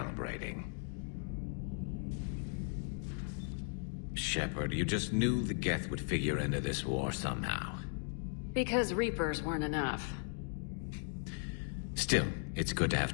Shepard, you just knew the Geth would figure into this war somehow. Because Reapers weren't enough. Still, it's good to have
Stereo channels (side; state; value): right; silent; 53 dB below the other